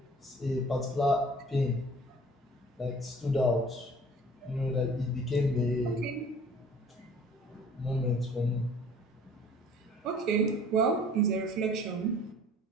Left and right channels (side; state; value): both; normal; correlation 0.50